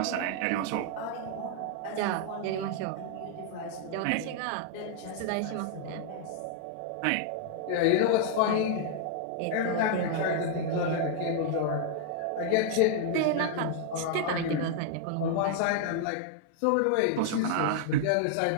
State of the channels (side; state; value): both; different; correlation -0.01